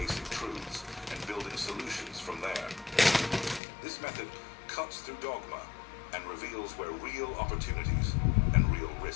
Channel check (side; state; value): right; drops out; at 3.6 s